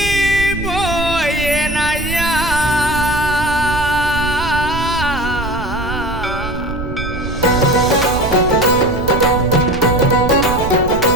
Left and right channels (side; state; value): right; noise; rumble, 8 dB below the sound